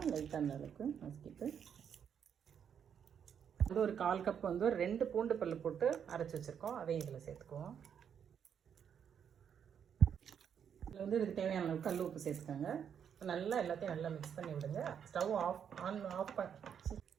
லைட்டாக அந்த அளவுக்கு நசுக்கிட்டு ஒரு 1/4 கப் ஒரு 2 பூண்டு பல்லு போட்டு அரைச்சி வச்சுருக்கோம். அதையும் இதில் சேர்த்துக்குவோம். இதில் இதுக்கு தேவையான அளவுக்கு கல் உப்பு சேர்த்துக்கோங்க. நல்லா எல்லாத்தையும் நல்லா மிக்ஸ் பண்ணி விடுங்க. ஸ்டவ் ஆஃப்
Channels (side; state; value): left; quieter; 8.0 dB